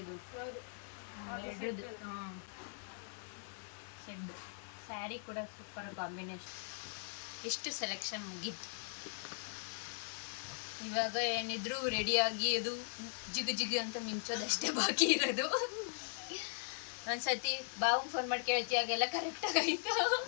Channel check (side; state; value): right; silent; digital silence